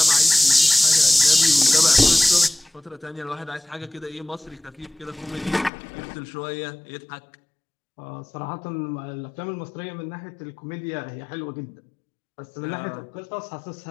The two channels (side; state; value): right; drops out; at 5.7 s